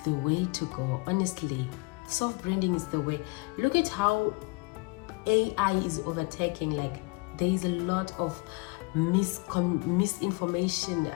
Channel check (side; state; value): right; quieter; 28.6 dB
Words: the way to go. Honestly, self-branding is the way. Look at how AI is overtaking. Like, there is a lot of misinformation,